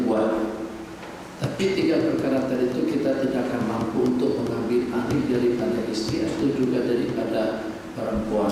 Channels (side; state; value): both; identical; correlation 1.00